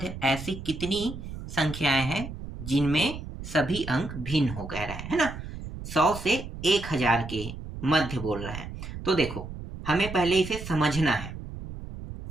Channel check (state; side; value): noise; right; rumble, 10 dB below the sound